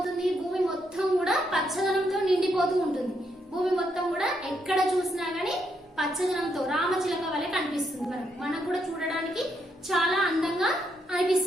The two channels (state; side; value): normal; both; correlation 0.77